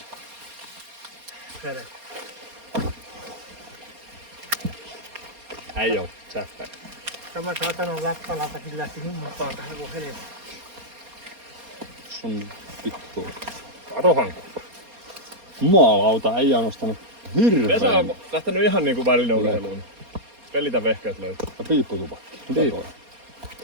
Ei oo säppä. Tämä saatanan läppälautakin lähti mukaan tähän kuin helvetti. Se on vittu. Katohan. Jumalauta, ei ole nostanut hirveän. Vesa on lähtenyt ihan niinku välineurheiluun. Pelitä vehkeät löytyy. Ja piipputupakki. Mitä toi?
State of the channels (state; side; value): late; left; 4.3 ms